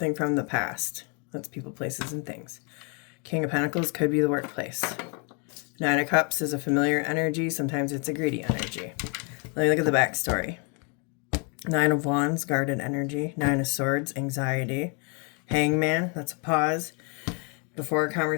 from the past. That's people, places, and things. King of Pentacles could be the workplace. Nine of Cups is a familiar energy. Sometimes it's a greedy energy. Let me look at the backstory. Nine of Wands, guarded energy. Nine of Swords, anxiety. Hangman, that's a pause before a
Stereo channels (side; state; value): right; quieter; 36.0 dB